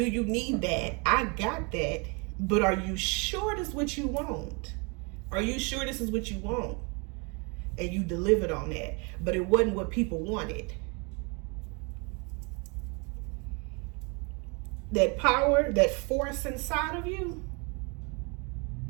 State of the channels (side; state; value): left; quieter; 32.0 dB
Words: you need that? I got that. But are you sure this is what you want? Are you sure this is what you want? And you delivered on that. But it wasn't what people wanted. That power, that force inside of you,